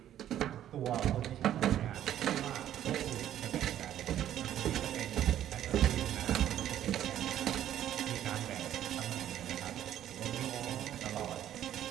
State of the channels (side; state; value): left; quieter; 11.5 dB